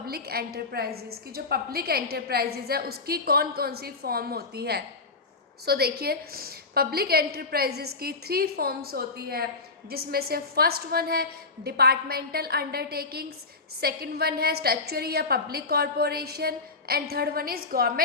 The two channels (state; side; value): quieter; right; 3.9 dB